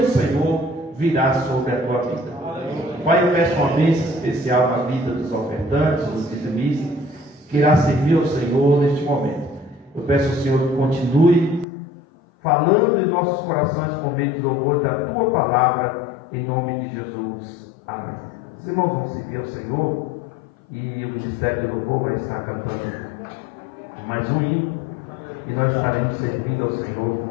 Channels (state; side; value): drops out; right; at 11.7 s